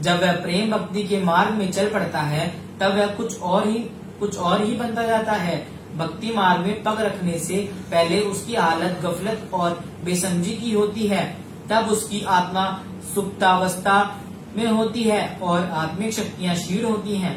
वह प्रेम भक्ति के मार्ग में चल पड़ता है तब वह कुछ और ही बनता जाता है। भक्ति मार्ग में पग रखने से पहले उसकी हालत गफलत और बेसमझी की होती है, तब उसकी आत्मा सुप्तावस्था में होती है और आत्मिक शक्तियां क्षीण होती हैं।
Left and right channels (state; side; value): identical; both; correlation 1.00